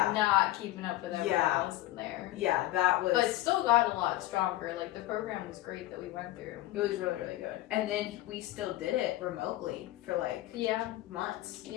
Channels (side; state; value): right; quieter; 16.0 dB